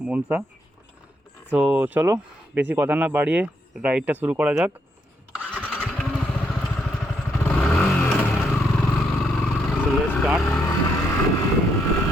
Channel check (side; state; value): both; normal; correlation 0.76